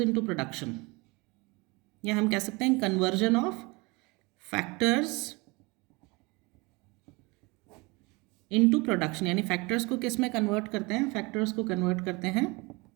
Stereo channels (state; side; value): quieter; left; 26.1 dB